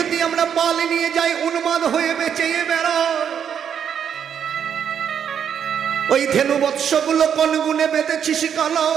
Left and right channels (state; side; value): quieter; left; 8.2 dB